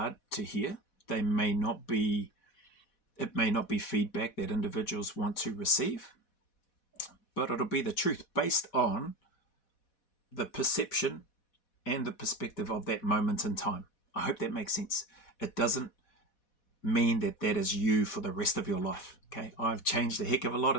to hear. It may not be feedback that individuals want to receive, but it'll be the truth based on the perception and the perspective of that moment in time. I hope that makes sense. It doesn't mean that that is you for the rest of your life. Okay, I've changed a heck of a lot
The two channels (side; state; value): right; late; 4.1 ms